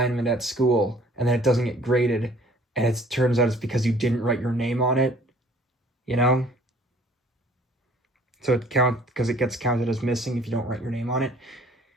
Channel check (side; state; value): both; normal; correlation 0.55